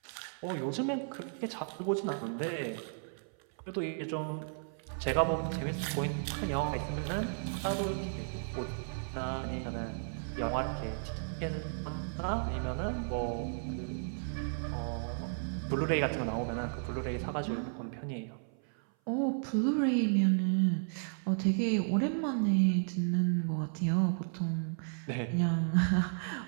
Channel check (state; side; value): silent; left; 55 dB below the other